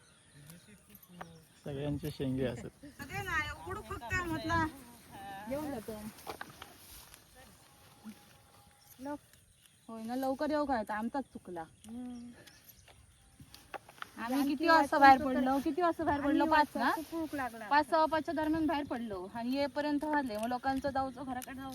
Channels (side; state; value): both; identical; correlation 1.00